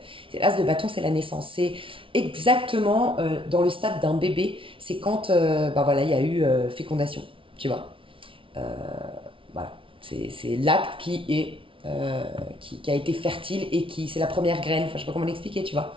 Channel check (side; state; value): left; late; 0.25 ms